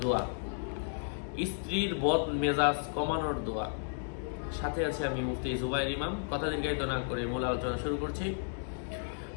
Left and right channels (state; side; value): silent; right; digital silence